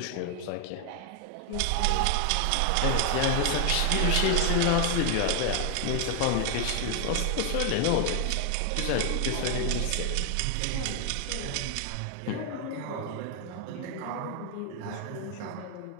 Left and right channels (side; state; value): both; different; correlation 0.00